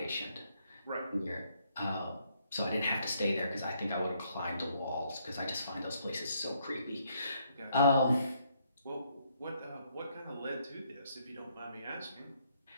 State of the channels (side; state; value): both; inverted; correlation -0.71